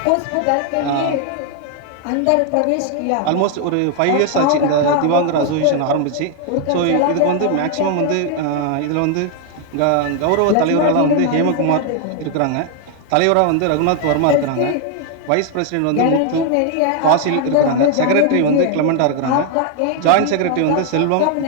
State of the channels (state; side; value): different; both; correlation 0.00